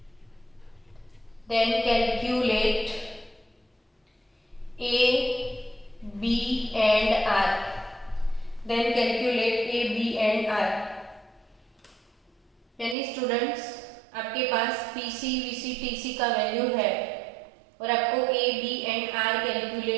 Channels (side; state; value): left; drops out; at 13.0 s